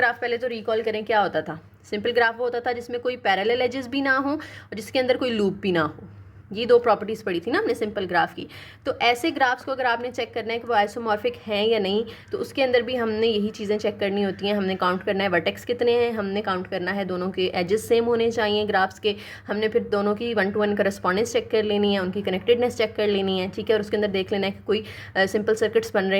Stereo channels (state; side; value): identical; both; correlation 1.00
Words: पहले तो रिकॉल करें क्या होता था, सिंपल ग्राफ वो होता था जिसमें कोई पैरेलल एजेस भी ना हो और जिसके अंदर कोई लूप भी ना हो, ये 2 प्रॉपर्टीज़ पढ़ी थी ना हमने सिंपल ग्राफ की। तो ऐसे ग्राफ्स को अगर आपने चेक करना है कि वो आइसोमॉर्फिक हैं या नहीं, तो उसके अंदर भी हमने यही चीज़ें चेक करनी होती हैं। हमने काउंट करना है वर्टेक्स कितने हैं, हमने काउंट करना है दोनों के एजेस सेम होने चाहिए ग्राफ्स के, हमने फिर दोनों की 1 to 1 करस्पॉन्डेंस चेक कर लेनी है, उनकी कनेक्टेडनेस चेक कर लेनी है, ठीक है। और उसके अंदर देख लेना है कि कोई सिंपल सर्किट्स बन